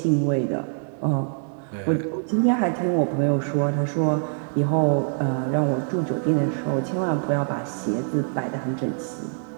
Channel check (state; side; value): silent; left; 62 dB below the other